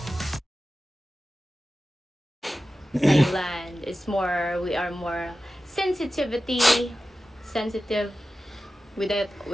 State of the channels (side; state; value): both; normal; correlation 0.94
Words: Thailand. We are more sensitive with it